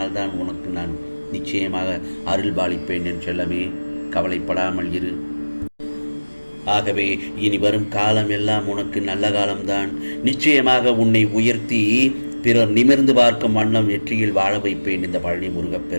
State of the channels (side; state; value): both; inverted; correlation -1.00